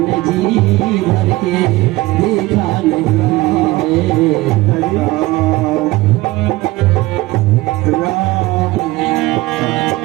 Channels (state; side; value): quieter; left; 19.6 dB